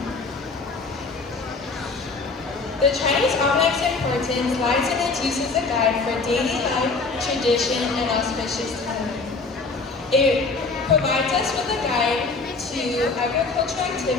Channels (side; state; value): right; quieter; 4.0 dB